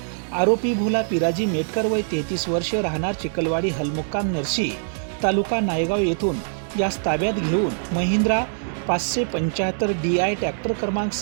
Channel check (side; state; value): left; silent; digital silence